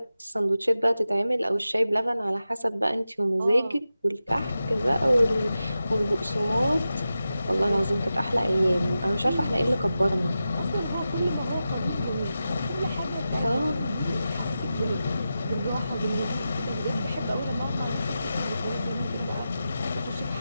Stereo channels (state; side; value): inverted; both; correlation -0.92